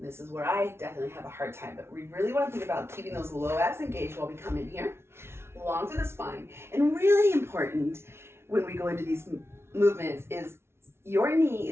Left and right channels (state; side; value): late; left; 0.12 ms